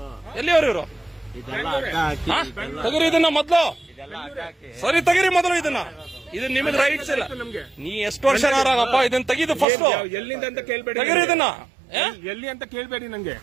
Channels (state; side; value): drops out; left; at 9.7 s